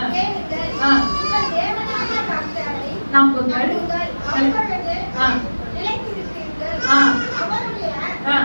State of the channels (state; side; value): inverted; both; correlation -1.00